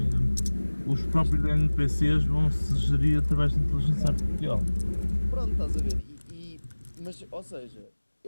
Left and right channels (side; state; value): both; inverted; correlation -1.00